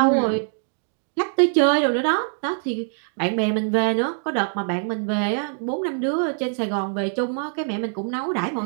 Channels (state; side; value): silent; left; 63 dB below the other